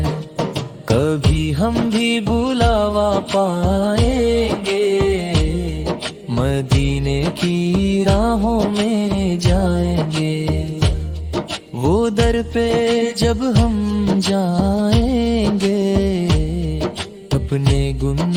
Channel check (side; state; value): both; identical; correlation 1.00